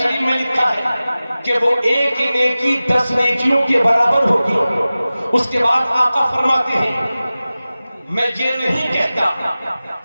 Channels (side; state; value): both; inverted; correlation -0.96